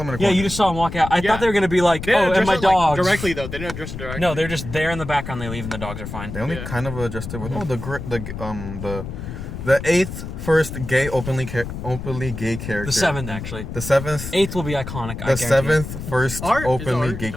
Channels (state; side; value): noise; left; rumble, 8 dB below the sound